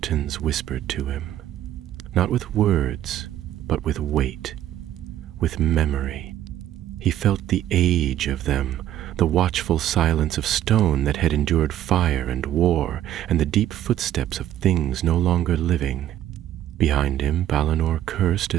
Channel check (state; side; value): quieter; left; 12.2 dB